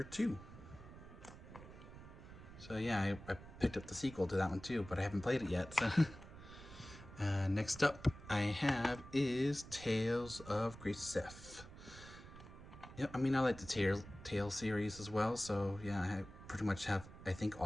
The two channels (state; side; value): noise; right; rumble, 15 dB below the sound